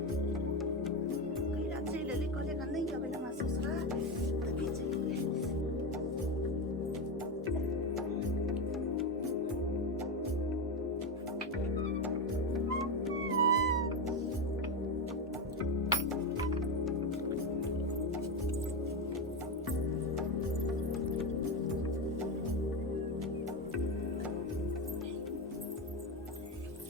कहिया चल ले कहले का नहीं आबै हमरा ससुरा तभी चल ले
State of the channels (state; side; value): normal; both; correlation 0.14